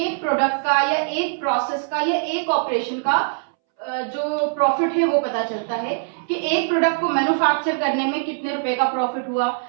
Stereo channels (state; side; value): silent; left; 64 dB below the other